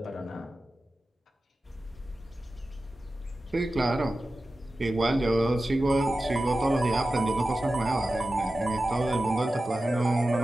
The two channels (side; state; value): both; normal; correlation 0.94